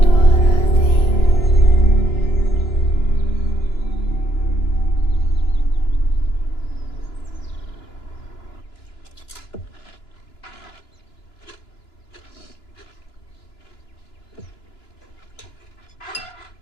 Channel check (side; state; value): right; late; 2.9 ms